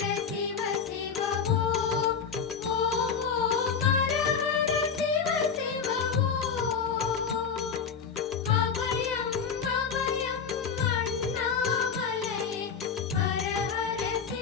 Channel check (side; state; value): right; quieter; 6.3 dB